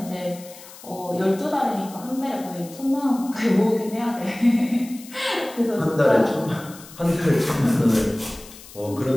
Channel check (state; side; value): noise; left; hiss, 18 dB below the sound